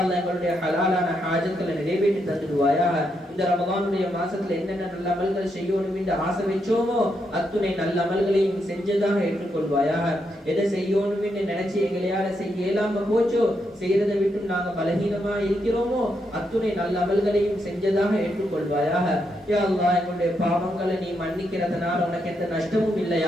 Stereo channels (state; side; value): normal; both; correlation 0.80